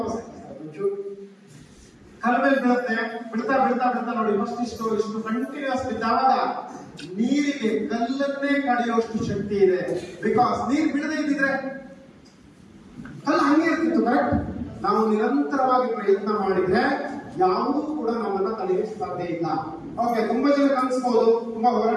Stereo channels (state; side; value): identical; both; correlation 1.00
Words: ಕಲ್ ಮೇಲೆ ಬೀಳುತ್ತೆ. ಬಿಡ್ತಾ ಬಿಡ್ತಾ ಬಿಡ್ತಾ ನೋಡಿ ಇಷ್ಟು ಕಂಟಿನ್ಯೂಸ್ ಬಿದ್ದಾವಾಗ ನೀರಿಗೆ ಕಲ್ಲನ್ನೇ ಕಡಿಯುವಷ್ಟು ಶಕ್ತಿ ಇದೆ. ಬಿಕಾಸ್ ನೀರು ಬಿಡದೇ ಇದ್ದಿದ್ರೆ ಕಲ್ಲು ಹಂಗೆ ಇರ್ತಿತ್ತು. ಕರೆಕ್ಟ್. ನಾವು ನಿರಂತರವಾಗಿ ಪ್ರಯತ್ನ ಮಾಡಿದ್ರೆ ಯಾವುದೂ ಕೂಡ ನಮ್ಮನ್ನ ತಡೆಯಲು ಸಾಧ್ಯ ಇಲ್ಲ. ಓಕೆ. ತುಂಬಾ ಜನ ಕನ್ಸ್ಬಹುದು ತುಂಬಾ